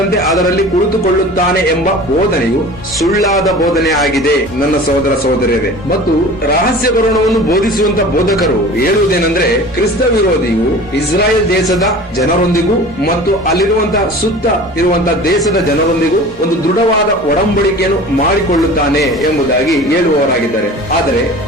ಅದರಲ್ಲಿ ಕುಳಿತುಕೊಳ್ಳುತ್ತಾನೆ ಎಂಬ ಬೋಧನೆಯು ಸುಳ್ಳಾದ ಬೋಧನೆ ಆಗಿದೆ ನನ್ನ ಸಹೋದರ ಸಹೋದರಿಯರೇ. ಮತ್ತು ರಹಸ್ಯ ಬರೋಣವನ್ನು ಬೋಧಿಸುವಂತ ಬೋಧಕರು ಹೇಳುವುದೇನೆಂದ್ರೆ, ಕ್ರಿಸ್ತ ವಿರೋಧಿಯು ಇಸ್ರಾಯೇಲ್ ದೇಶದ ಜನರೊಂದಿಗೂ ಮತ್ತು ಅಲ್ಲಿರುವಂತಹ ಸುತ್ತ ಇರುವಂತಹ ದೇಶದ ಜನರೊಂದಿಗೂ ಒಂದು ದೃಢವಾದ ಒಡಂಬಡಿಕೆಯನ್ನು ಮಾಡಿಕೊಳ್ಳುತ್ತಾನೆ ಎಂಬುದಾಗಿ ಹೇಳುವವರಾಗಿದ್ದಾರೆ. ಆದರೆ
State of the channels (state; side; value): normal; both; correlation 0.40